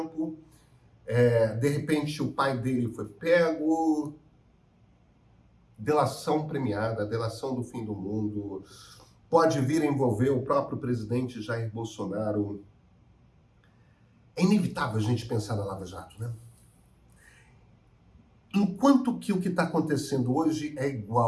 de repente o pai dele foi pego, delação premiada, delação do fim do mundo, pode vir a envolver o próprio presidente Jair Bolsonaro. É inevitável a gente pensar na Lava Jato, né? Enquanto que o que está acontecendo hoje é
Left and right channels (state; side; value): identical; both; correlation 1.00